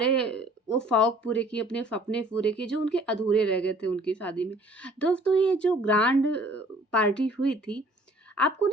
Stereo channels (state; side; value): normal; both; correlation 0.55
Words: वो शौक पूरे किए, अपने सपने पूरे किए जो उनके अधूरे रह गए थे उनकी शादी में। दोस्तों, ये जो ग्रैंड पार्टी हुई थी, आपको